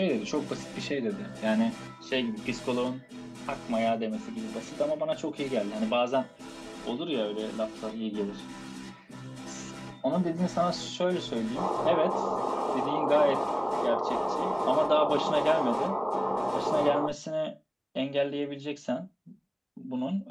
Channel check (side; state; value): both; identical; correlation 1.00